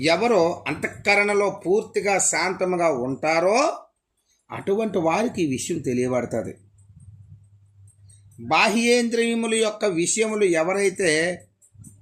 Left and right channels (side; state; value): both; identical; correlation 1.00